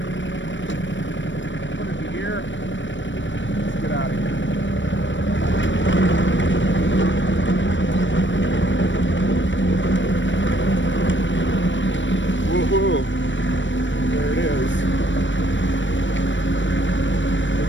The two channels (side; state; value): right; late; 0.54 ms